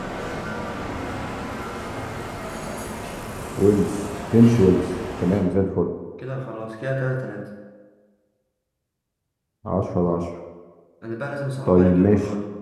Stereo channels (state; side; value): identical; both; correlation 1.00